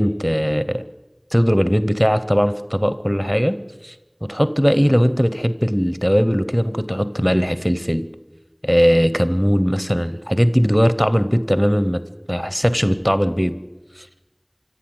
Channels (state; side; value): identical; both; correlation 1.00